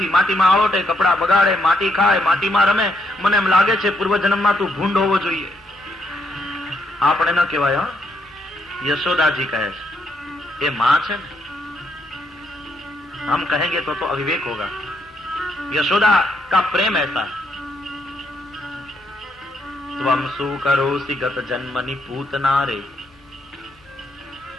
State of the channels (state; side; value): normal; both; correlation 0.76